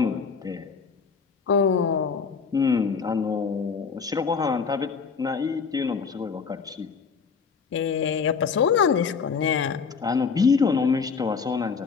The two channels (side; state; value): right; quieter; 5.6 dB